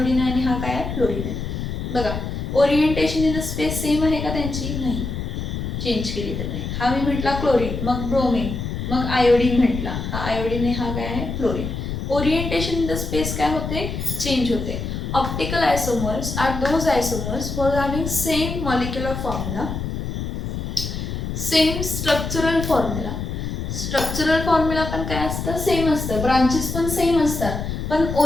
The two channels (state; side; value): noise; left; rumble, 4 dB below the sound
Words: आहे आणि हा काय आहे, फ्लोरीन आहे. बघा orientation in the space same आहे का त्यांची, नाही, चेंज केली तर नाही. हा मी म्हटला क्लोरीन, मग ब्रोमीन, मग आयोडीन म्हटला, हा आयोडीन आहे, हा काय आहे, fluorine. Orientation in the space काय होते, चेंज होते. Optical isomers are those isomers for having same molecular formula, same structural formula. Structural formula पण काय असतं, सेम असतं, ब्रांचेस पण सेम असतात, पण